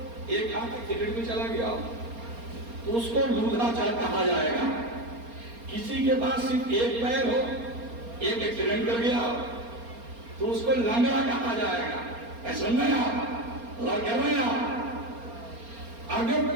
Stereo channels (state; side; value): late; left; 4.3 ms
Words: ایک ہاتھ ایکسیڈنٹ میں چلا گیا ہو تو اس کو لولا کہا جائے گا. کسی کے پاس صرف ایک پیر ہو، ایک ایکسیڈنٹ کر گیا ہو تو اس کو لنگڑا کہا جائے گا. ایسا نہیں آپ غور کر رہے ہیں آپ؟ اگر